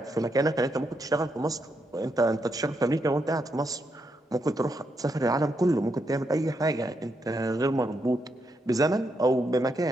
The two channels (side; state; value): both; normal; correlation 0.80